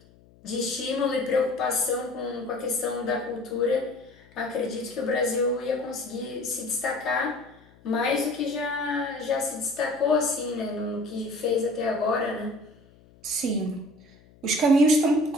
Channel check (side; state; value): left; noise; hum, 27 dB below the sound